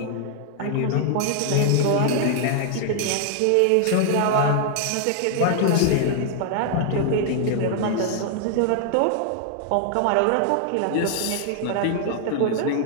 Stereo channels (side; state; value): both; different; correlation 0.00